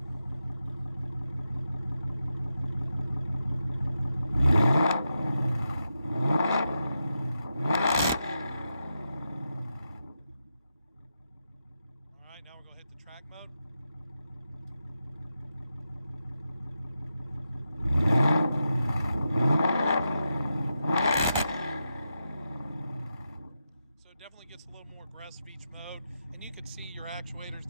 All right, now we're going to hit the track mode. So it definitely gets a little more aggressive each mode, and you can see your actuators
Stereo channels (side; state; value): both; inverted; correlation -0.87